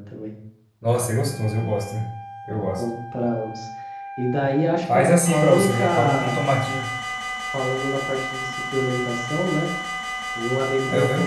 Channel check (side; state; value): both; identical; correlation 1.00